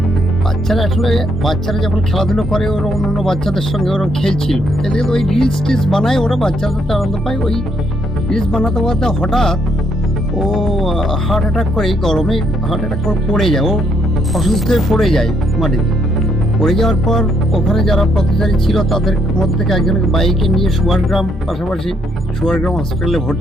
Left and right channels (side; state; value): both; normal; correlation 0.72